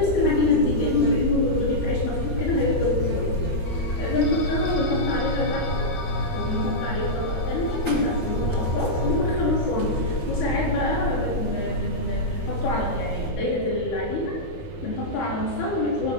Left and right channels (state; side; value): late; right; 13 ms